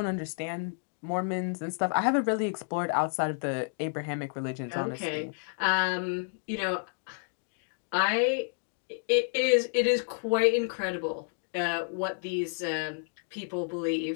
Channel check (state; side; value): silent; right; digital silence